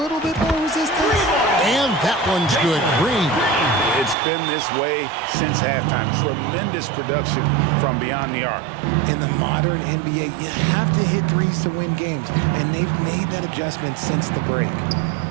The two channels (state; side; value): drops out; left; at 4.2 s